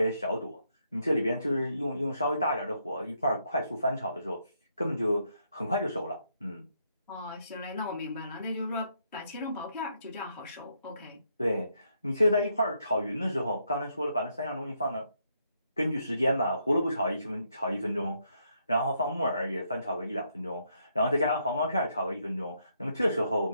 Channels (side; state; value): both; inverted; correlation -0.76